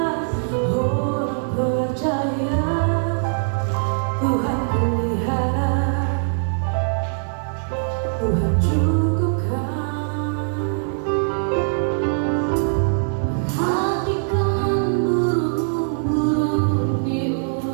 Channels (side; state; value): left; silent; 64 dB below the other